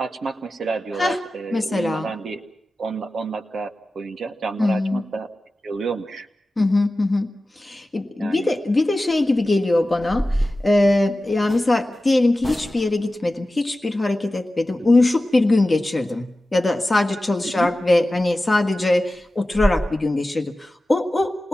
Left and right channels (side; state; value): both; normal; correlation 0.95